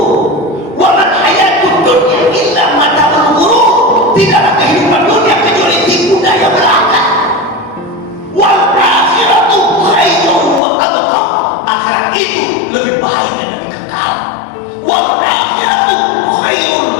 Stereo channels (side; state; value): right; drops out; at 10.6 s